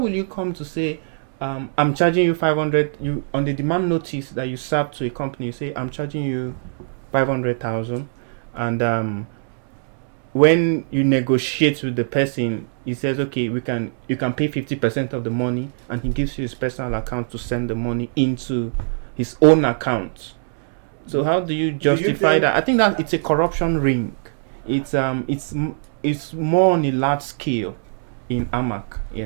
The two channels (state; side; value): silent; left; 64 dB below the other